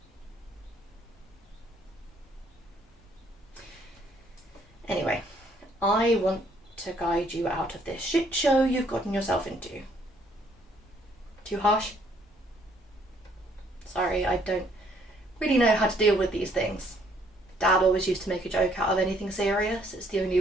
Anyway, I want to guide you out of this shit show you've gotten yourself into. Too harsh? Sorry, I don't really know how to deal with these things. Dad always used to make a joke out of anything serious. It's the only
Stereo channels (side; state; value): both; normal; correlation 0.65